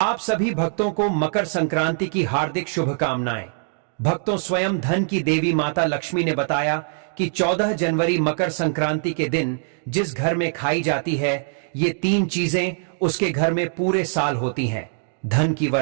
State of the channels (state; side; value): silent; left; digital silence